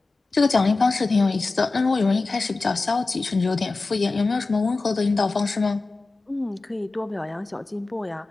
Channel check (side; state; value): right; quieter; 3.6 dB